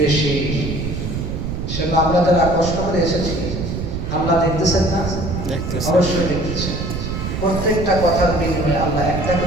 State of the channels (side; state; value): right; noise; rumble, 4 dB below the sound